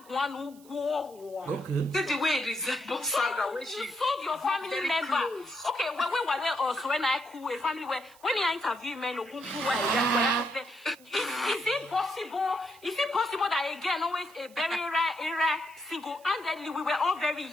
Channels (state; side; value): noise; right; hiss, 25 dB below the sound